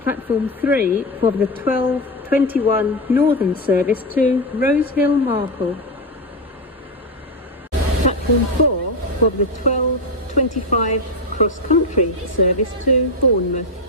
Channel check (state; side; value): normal; both; correlation 0.12